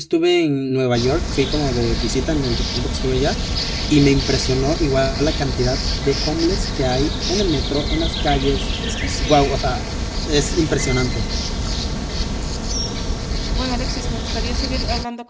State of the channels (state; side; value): identical; both; correlation 1.00